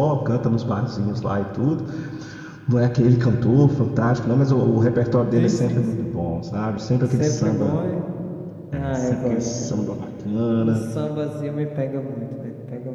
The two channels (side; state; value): both; identical; correlation 1.00